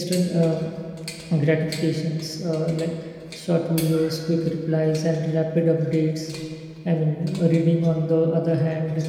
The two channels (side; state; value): both; identical; correlation 1.00